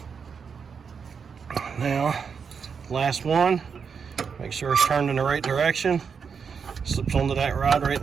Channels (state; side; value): quieter; left; 6.2 dB